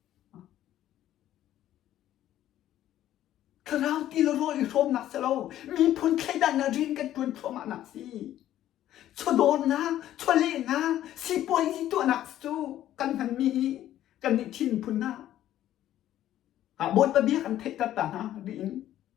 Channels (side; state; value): right; quieter; 12.6 dB